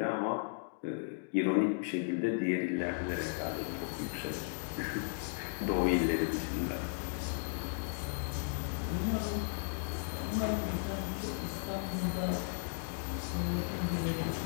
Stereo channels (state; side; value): silent; right; digital silence